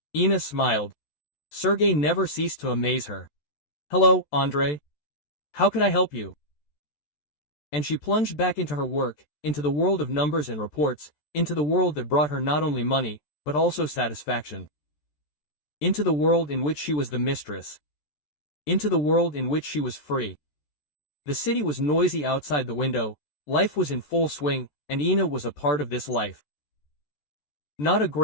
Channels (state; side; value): late; right; 14 ms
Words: Inna smiled. Sergey never ceased to amaze her. Hello, Andrei. How can I help you? And she plunged back into her work, into the world of numbers and reports, into the world that brought her not only money, but also satisfaction. Into the world in which she was the mistress. Into the world in which she was free. The city was noisy outside the window, life was in full swing, and Inna was a part of this life. Not a